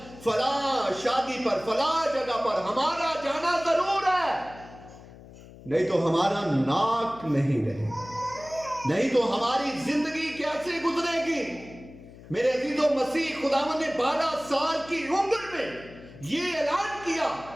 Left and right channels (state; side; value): noise; left; hum, 19 dB below the sound